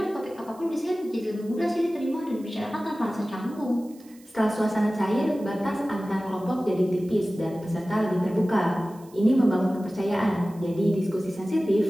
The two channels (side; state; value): right; noise; hiss, 26 dB below the sound